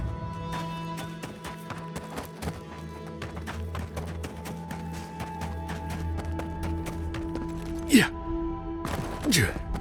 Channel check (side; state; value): both; identical; correlation 1.00